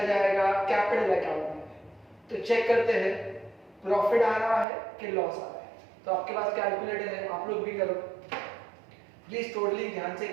जाएगा कैपिटल अकाउंट में, तो चेक करते हैं प्रॉफिट आ रहा है कि लॉस आ रहा है। तो आपके पास कैलकुलेटर है, आप लोग भी करो प्लीज, टोटलिंग ध्यान से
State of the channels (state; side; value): drops out; left; at 4.7 s